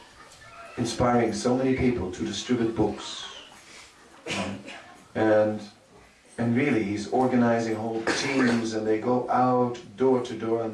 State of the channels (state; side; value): identical; both; correlation 1.00